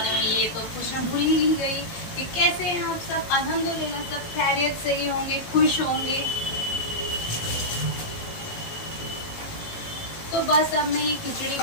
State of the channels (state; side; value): late; right; 18 ms